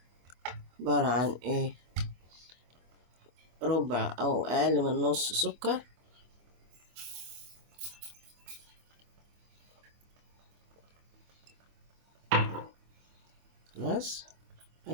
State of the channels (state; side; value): late; left; 24 ms